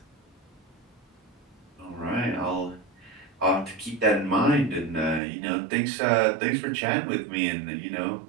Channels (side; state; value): left; drops out; at 5.2 s